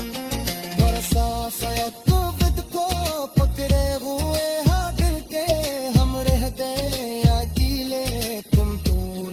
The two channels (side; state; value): both; identical; correlation 1.00